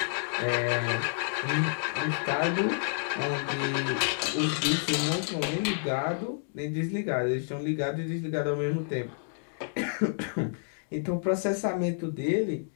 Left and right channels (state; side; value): silent; right; digital silence